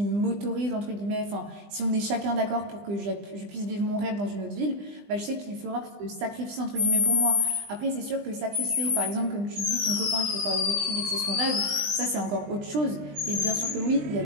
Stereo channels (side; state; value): left; late; 20 ms